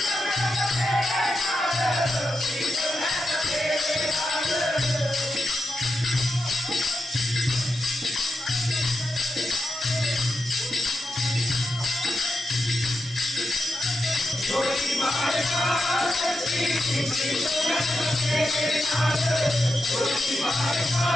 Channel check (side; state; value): both; normal; correlation 0.87